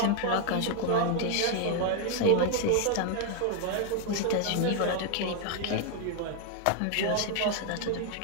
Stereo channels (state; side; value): different; both; correlation 0.00